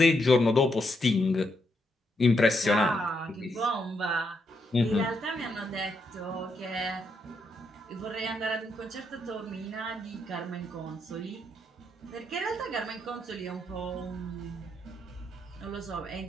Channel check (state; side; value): normal; both; correlation 0.79